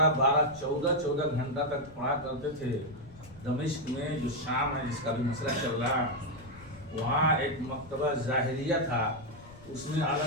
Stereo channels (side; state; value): left; noise; rumble, 20 dB below the sound